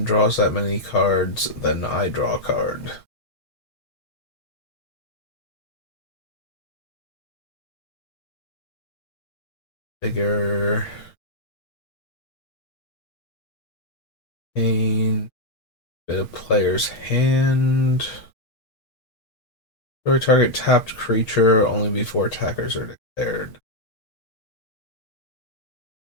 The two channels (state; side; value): late; right; 6.4 ms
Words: draws that many cards, then I draw a card. Bigger. Pain. Bit of player's hand. Destroy target tapped creature only before attackers are declared.